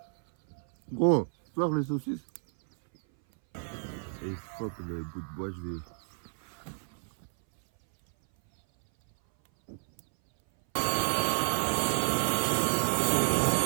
Gros, faire les saucisses. Et fuck le bout de bois, je vais.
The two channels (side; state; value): left; silent; 58 dB below the other